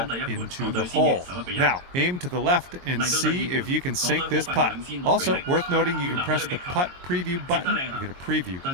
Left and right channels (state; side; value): late; left; 22 ms